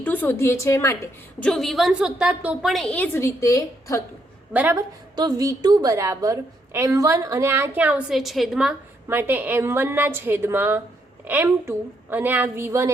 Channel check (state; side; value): normal; both; correlation 0.75